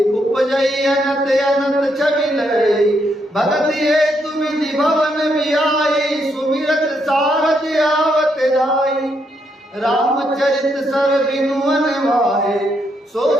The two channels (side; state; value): both; normal; correlation 0.77